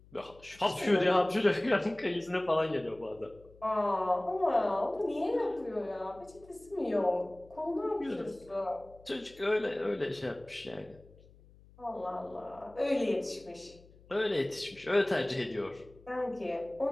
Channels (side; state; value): left; noise; hum, 25 dB below the sound